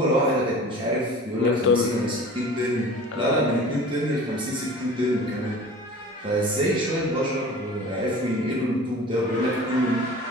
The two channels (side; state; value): both; normal; correlation 0.41